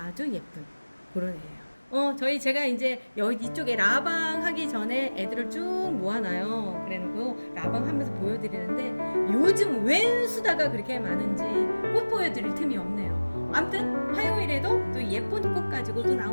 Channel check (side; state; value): both; inverted; correlation -1.00